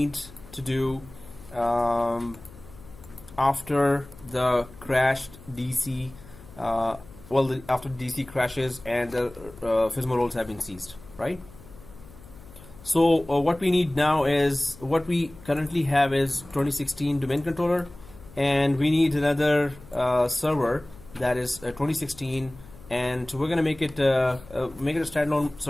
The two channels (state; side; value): noise; left; hum, 20 dB below the sound